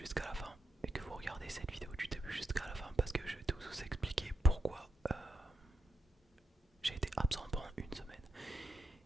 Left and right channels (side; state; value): both; normal; correlation 0.82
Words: jusqu'à la fin et que vous regardez cette vidéo du début jusqu'à la fin parce que je vais tout vous expliquer pourquoi j'ai été absent pendant une semaine.